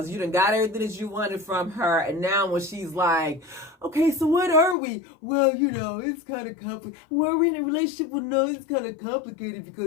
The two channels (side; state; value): right; drops out; at 4.8 s